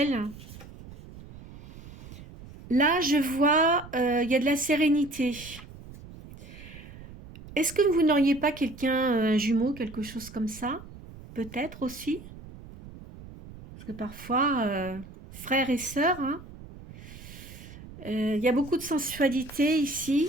Là, je vois, il y a de la sérénité. Est-ce que vous n'auriez pas quelqu'un, un jumeau, quelque chose comme ça? Peut-être aussi. Parce que parfois, frères et sœurs, hein, il y a beaucoup de sensualité ici.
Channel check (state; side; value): noise; right; rumble, 16 dB below the sound